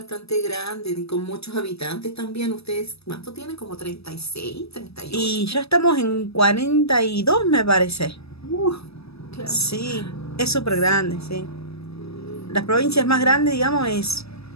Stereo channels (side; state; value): right; late; 0.78 ms